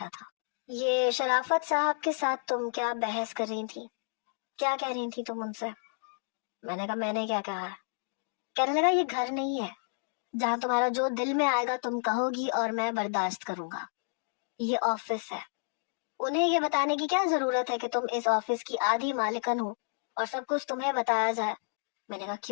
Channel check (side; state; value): right; silent; digital silence